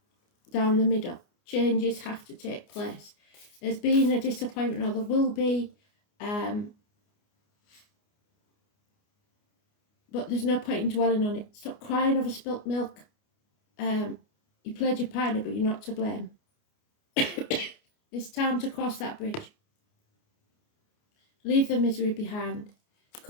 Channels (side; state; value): right; late; 29 ms